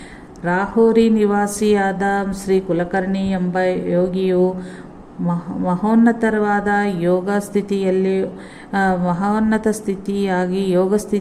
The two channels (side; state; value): both; identical; correlation 1.00